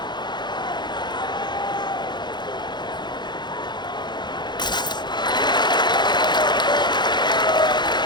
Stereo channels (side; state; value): right; late; 0.21 ms